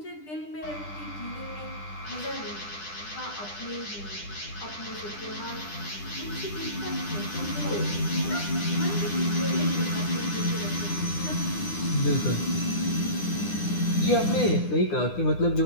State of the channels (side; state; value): right; late; 9.9 ms